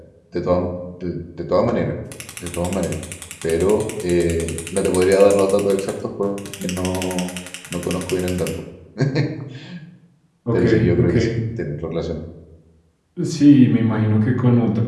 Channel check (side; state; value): both; identical; correlation 1.00